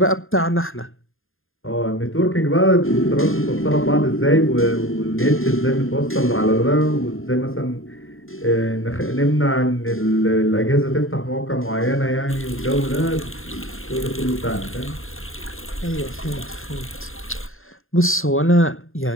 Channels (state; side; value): late; right; 0.60 ms